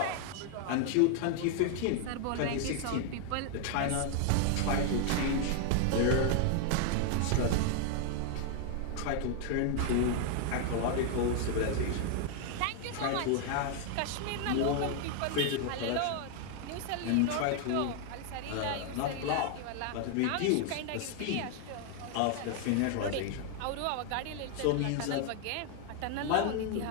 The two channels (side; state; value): both; different; correlation 0.00